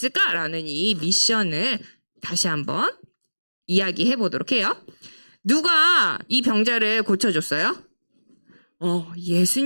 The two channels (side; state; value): both; inverted; correlation -1.00